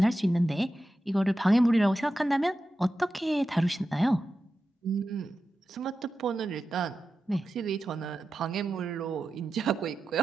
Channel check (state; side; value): normal; both; correlation 0.92